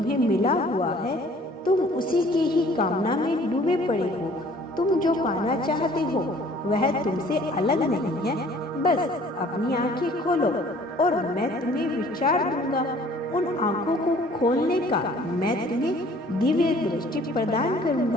मिला हुआ है तुम उसी की ही कामना में डूबे पड़े हो। तुम जो पाना चाहते हो वह तुमसे अलग नहीं है। बस अपनी आंखें खोलो और मैं तुम्हें विचार दूंगा। उन आंखों को खोलने का मैं तुम्हें दिव्य दृष्टि प्रदान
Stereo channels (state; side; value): normal; both; correlation 0.54